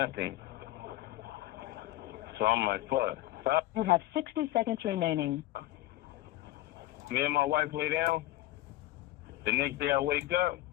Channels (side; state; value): right; quieter; 16.3 dB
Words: So I'm like, fuck. So You have 60 seconds remaining. Me and my wife lay down. The next day I wake up,